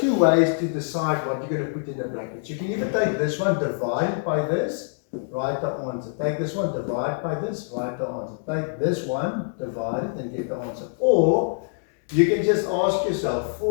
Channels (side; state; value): right; silent; 62 dB below the other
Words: ways to decide what you're going to put in the brackets. You can either take this one, divide by this, write the answer. Take this one, divide by this, write the answer. Take this one, divide it, and get the answer. Or you can just ask yourself,